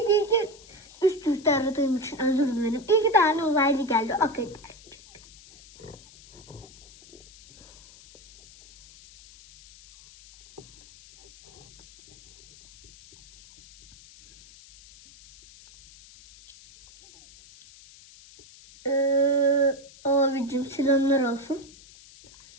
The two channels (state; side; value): noise; left; hiss, 23 dB below the sound